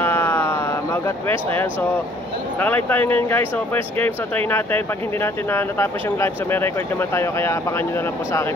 Maugat West. Ayan, so nakalive tayo ngayon guys. So first game, so try natin. Pag hindi natin natapos yung live, so may record naman tayo. Kaya abangan nyo na lang po sa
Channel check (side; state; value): both; normal; correlation 0.59